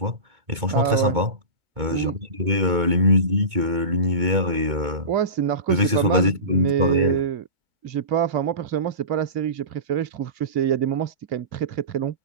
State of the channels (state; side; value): late; left; 2.2 ms